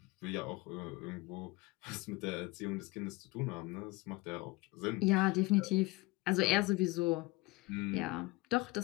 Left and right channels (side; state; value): right; quieter; 21.6 dB